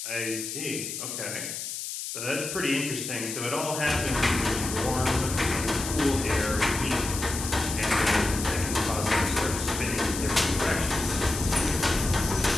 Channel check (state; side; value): noise; left; hiss, 6 dB below the sound